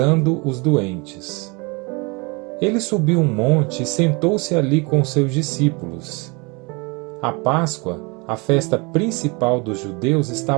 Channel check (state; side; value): quieter; left; 29.0 dB